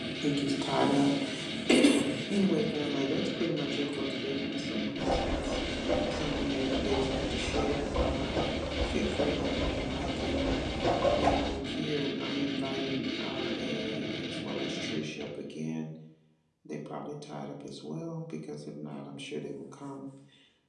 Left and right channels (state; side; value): identical; both; correlation 1.00